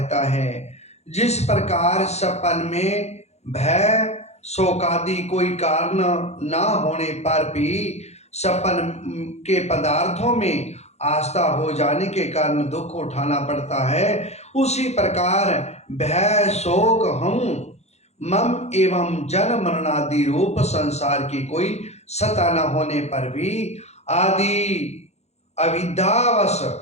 है। जिस प्रकार सपन में भय शोकादि कोई कारण ना होने पर भी सपन के पदार्थों में आस्था हो जाने के कारण दुख उठाना पड़ता है, उसी प्रकार भय शोक हम मम एवं जन्म मरणादि रूप संसार की कोई सत्ता न होने पर भी आदि अविद्यावश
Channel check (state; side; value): late; right; 0.31 ms